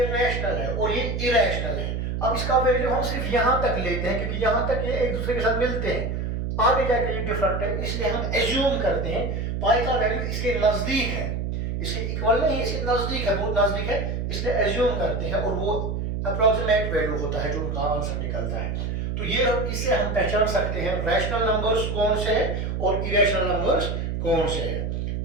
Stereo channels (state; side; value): noise; right; hum, 2 dB below the sound